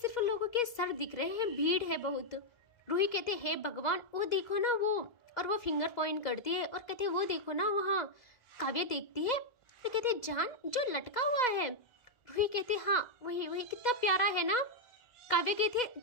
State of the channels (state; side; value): late; right; 2.0 ms